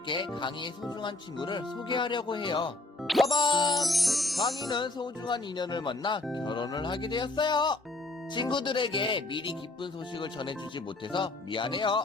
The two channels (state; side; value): quieter; right; 3.0 dB